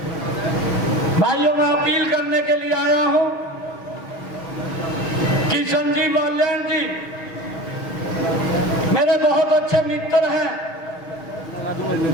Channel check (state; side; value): late; right; 6.3 ms